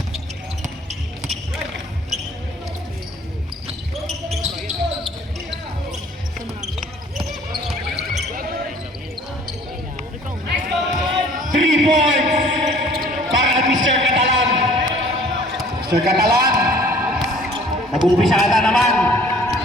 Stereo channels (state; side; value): normal; both; correlation 0.53